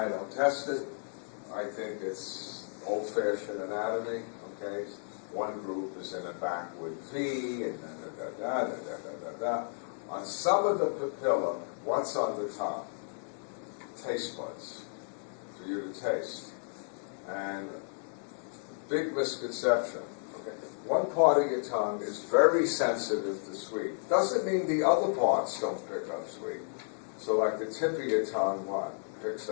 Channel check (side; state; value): right; silent; digital silence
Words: don't test it. I think it's old-fashioned anatomy, okay? One group is in a backward V, and da-da-da-da-da-da-da-da. On some of the papilla, what's on the top? Taste buds for you to taste. And big misconception. Okay? One part of your tongue is very sensitive to sweet. Doesn't mean the other parts don't pick up sweet. So like the tip of your tongue, what? Picks